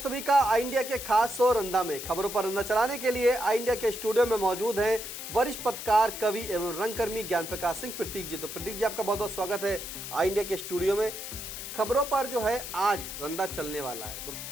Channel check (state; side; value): noise; left; hiss, 8 dB below the sound